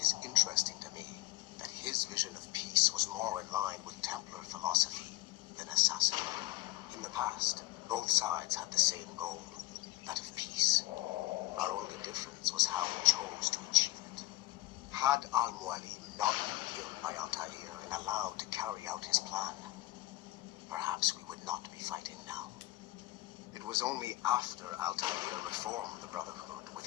is interesting to me that his vision of peace was more in line with Templar philosophy than assassin. In the past, both sides had the same goal, that of peace. Our only difference was how we chose to achieve it. Had Al-Mualim not been killed by Altair and allowed to carry out his plan, perhaps we would not be fighting now. It was only after Altair reformed the Brotherhood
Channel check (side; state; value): right; quieter; 18.2 dB